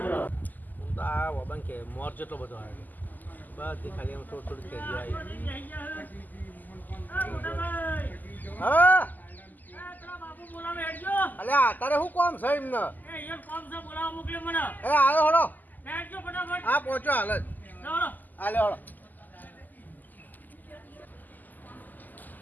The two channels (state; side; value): late; right; 0.084 ms